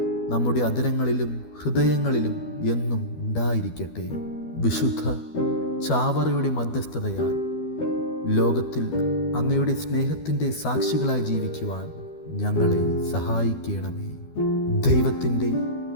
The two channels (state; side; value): late; right; 12 ms